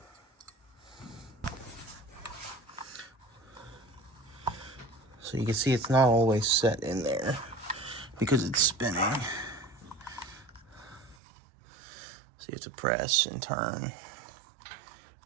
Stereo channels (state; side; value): drops out; left; at 11.2 s